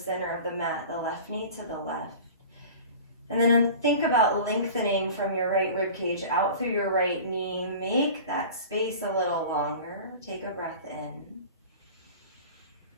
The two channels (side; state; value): both; inverted; correlation -0.39